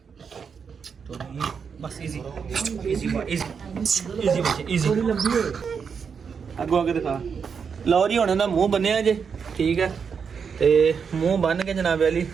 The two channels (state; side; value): quieter; left; 6.3 dB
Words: ਟੋਨੀ, ਬਸ ਈਜ਼ੀ ਅੱਗੋਂ ਅੱਗੇ ਦਿਖਾ। ਲਓ ਜੀ ਹੁਣ ਇਹਦਾ ਮੂੰਹ ਬੰਨਿਆ ਜੇ, ਠੀਕ ਹੈ। ਤੇ ਮੂੰਹ ਬੰਨ ਕੇ ਜਨਾਬ ਵਾਲੀ